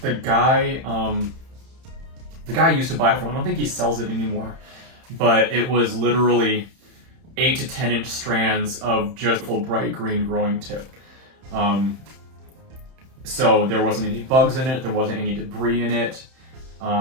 The guy used to buy it from, I don't think he sells it anymore, but it was literally 8 to 10 inch strands of just full bright green growing tip. So there wasn't any bugs in it, there wasn't any debris in it.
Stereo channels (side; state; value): left; late; 31 ms